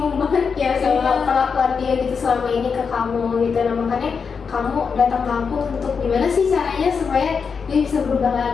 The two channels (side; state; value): right; quieter; 5.8 dB